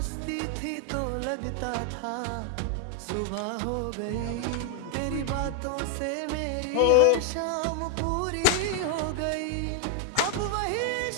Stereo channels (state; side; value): different; both; correlation 0.00